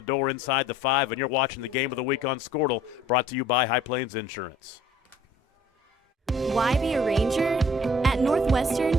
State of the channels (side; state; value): both; normal; correlation 0.54